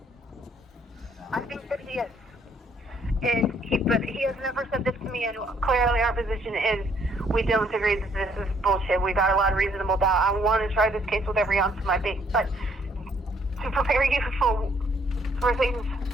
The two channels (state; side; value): normal; both; correlation 0.67